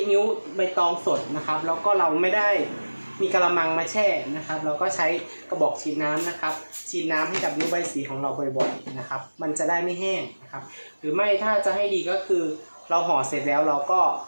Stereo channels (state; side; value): inverted; both; correlation -1.00